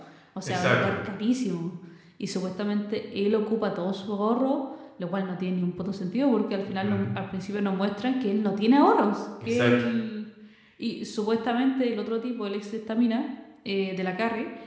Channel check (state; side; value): identical; both; correlation 1.00